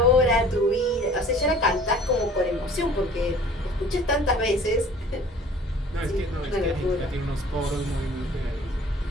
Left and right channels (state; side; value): normal; both; correlation 0.49